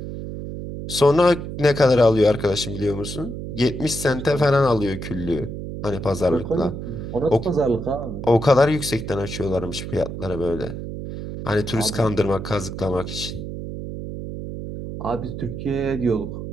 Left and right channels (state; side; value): noise; right; hum, 8 dB below the sound